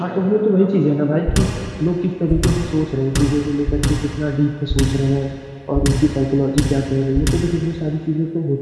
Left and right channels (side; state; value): both; identical; correlation 1.00